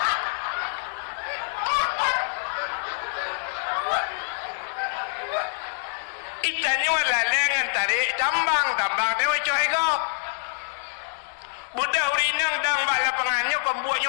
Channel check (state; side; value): silent; right; digital silence